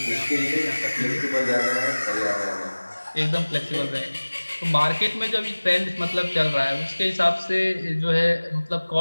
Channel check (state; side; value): inverted; both; correlation -1.00